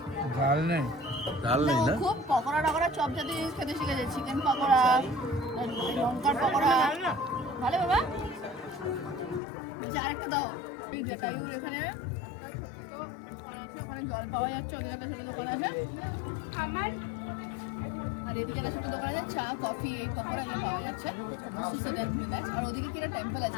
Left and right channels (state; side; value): drops out; right; at 9.4 s